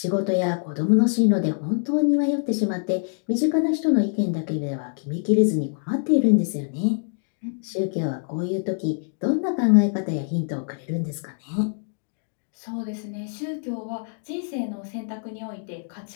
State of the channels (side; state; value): right; silent; digital silence